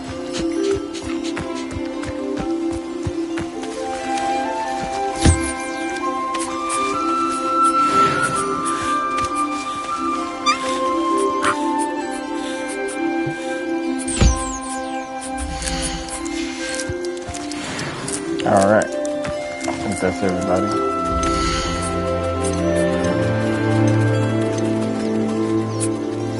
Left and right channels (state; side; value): identical; both; correlation 1.00